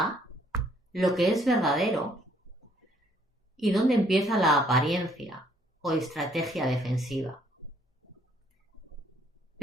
lo que es verdadero y dónde empieza la apariencia o estrategia defensiva.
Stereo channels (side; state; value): both; normal; correlation 0.65